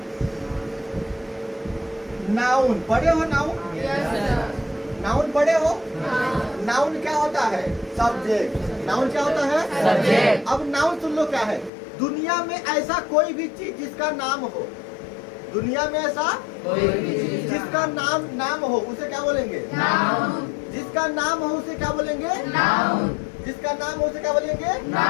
नाउन। पढ़े हो नाउन? नाउन पढ़े हो? नाउन क्या होता है? सब्जेक्ट। नाउन क्या होता है? सब्जेक्ट। अब नाउन सुन लो क्या है? दुनिया में ऐसा कोई भी चीज जिसका नाम हो, दुनिया में ऐसा कोई भी चीज जिसका नाम हो उसे क्या बोलेंगे? नाउन। जिसका नाम हो उसे क्या बोलेंगे? नाउन। जिसका नाम हो उसे क्या बोलेंगे?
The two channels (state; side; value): drops out; right; at 11.7 s